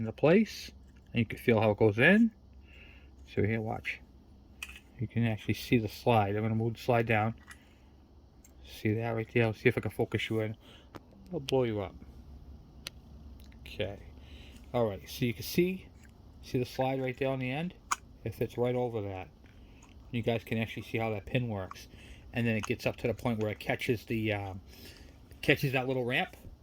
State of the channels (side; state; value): both; identical; correlation 1.00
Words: place, and you can feel how it goes in. So here, watch. You can actually see the slide. I'm going to move the slide down. See that right there? I'll see if I can focus you in. I'll blow you up. Okay. Alright, so you can see the slide right there on the end? It fits right over that. You guys can actually see how that pin works. And then it gets up to the point where it catches the catches that little ramp.